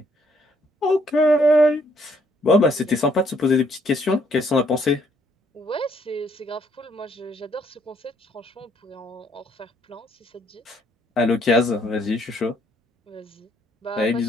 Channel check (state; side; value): normal; both; correlation 0.67